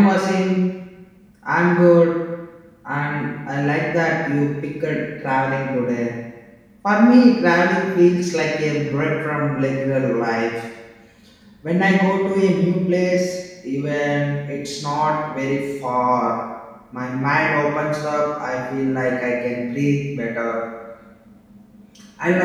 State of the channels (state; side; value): identical; both; correlation 1.00